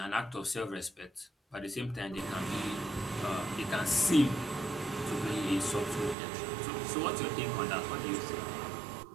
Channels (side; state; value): left; drops out; at 6.2 s